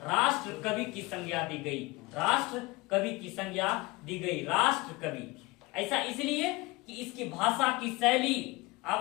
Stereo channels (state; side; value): quieter; right; 23.1 dB